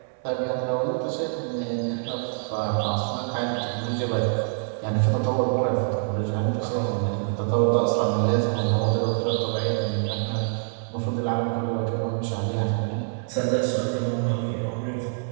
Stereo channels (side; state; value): left; silent; 61 dB below the other